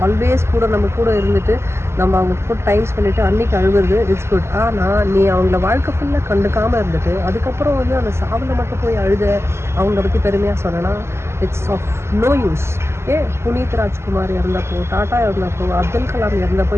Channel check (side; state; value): left; late; 0.13 ms